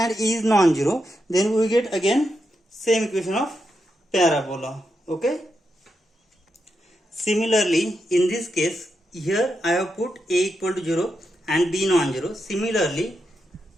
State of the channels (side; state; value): both; normal; correlation 0.85